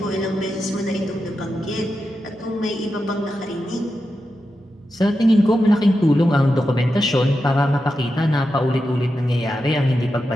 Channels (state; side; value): normal; both; correlation 0.89